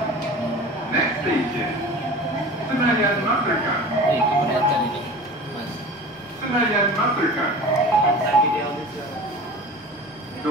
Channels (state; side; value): normal; both; correlation 0.37